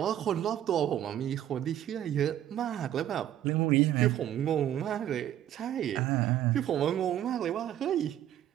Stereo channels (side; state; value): left; quieter; 11.6 dB